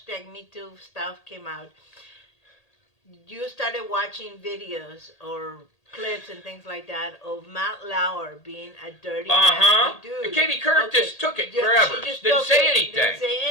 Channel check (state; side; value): late; right; 1.8 ms